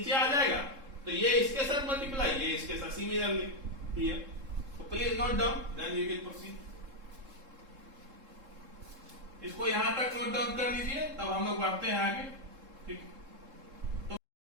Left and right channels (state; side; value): late; left; 3.7 ms